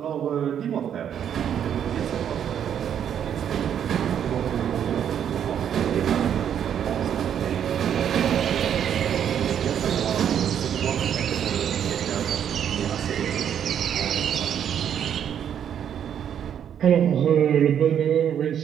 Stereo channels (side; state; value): left; quieter; 9.1 dB